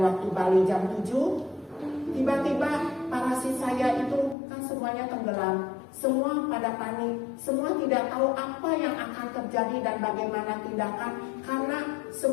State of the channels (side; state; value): right; drops out; at 4.4 s